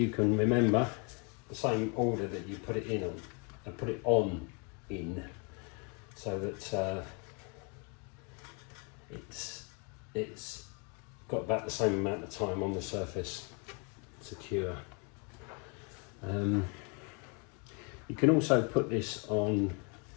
can remember, the same order that you put it in on, and put it on in, so that it's got about the same amount of time on the surface to cure. You can also put this on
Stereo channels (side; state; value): right; quieter; 34.9 dB